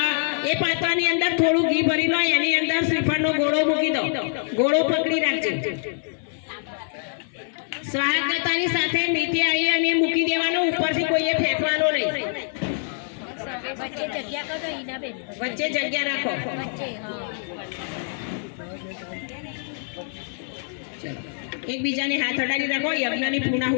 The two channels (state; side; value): silent; right; 62 dB below the other